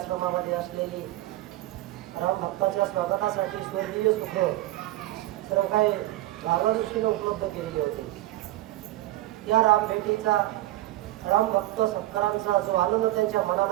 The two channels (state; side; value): quieter; left; 16.4 dB